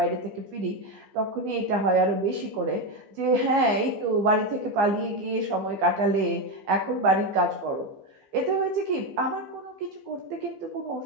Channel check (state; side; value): late; left; 15 ms